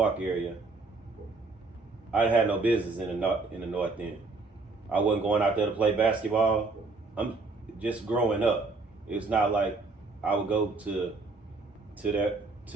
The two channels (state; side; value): quieter; left; 3.8 dB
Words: area. I had no business in the North End. I wasn't going out there to play basketball. I'm just growing up. It's not like I would go to